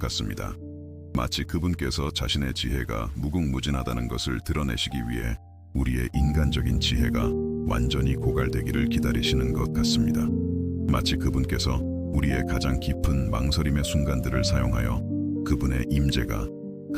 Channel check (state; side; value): identical; both; correlation 1.00